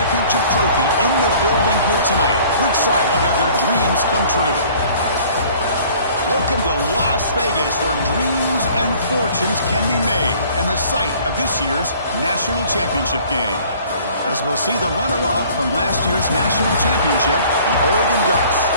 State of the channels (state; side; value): inverted; both; correlation -0.53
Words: trophy in the building here tonight. Which side will have their dreams come true? Welcome to Las Vegas, where dreams and fortunes can be made, and the site of this year's national championship game. As we'll see the runner-up from last year's national championship, the Oregon Ducks,